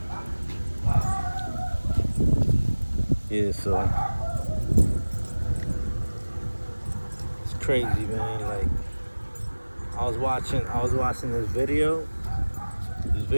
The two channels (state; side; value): inverted; both; correlation -1.00